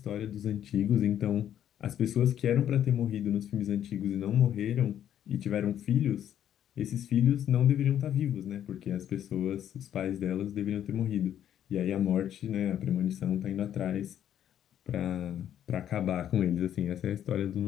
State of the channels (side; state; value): right; quieter; 10.4 dB